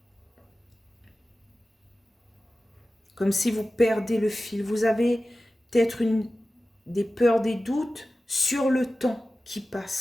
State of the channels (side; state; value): both; normal; correlation 0.95